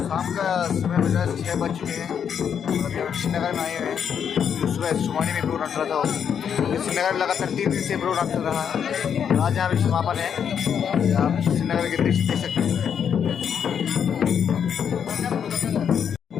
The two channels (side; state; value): right; quieter; 7.9 dB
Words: का समय बजा 6 बज चुके हैं और अभी हम श्रीनगर में आए हुए हैं। सुबह सोमाड़ी में प्रोग्राम चल रहा था। श्रीनगर लगातार 3 दिन से प्रोग्राम चल रहा है। आज यहाँ भी समापन है। आप श्रीनगर के दृश्य देख सकते हैं।